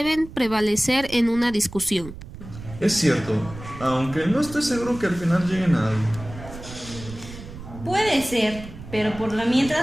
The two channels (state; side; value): noise; right; rumble, 14 dB below the sound